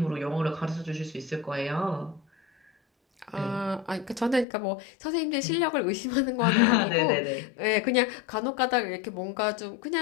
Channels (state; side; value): drops out; right; at 4.5 s